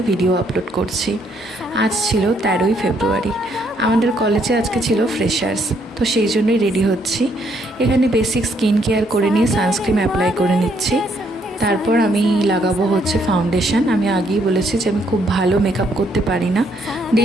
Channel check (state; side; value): normal; both; correlation 0.70